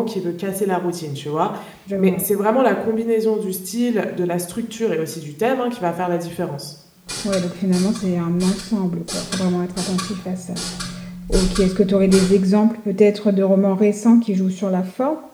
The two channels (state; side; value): identical; both; correlation 1.00